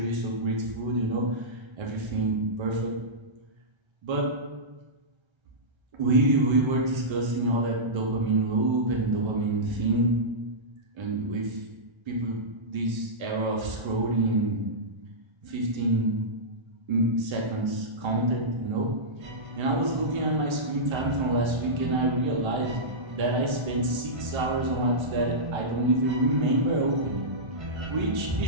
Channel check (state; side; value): late; left; 1.3 ms